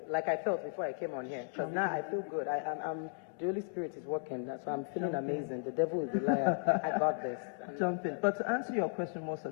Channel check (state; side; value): silent; right; digital silence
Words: before I came on here, because now I feel good. The Holy Spirit is working, so I'm feeling amazing. The devil is a liar. I got this. Jump in. But to answer your question more